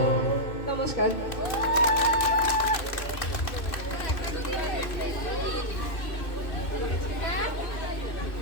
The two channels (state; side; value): late; right; 2.6 ms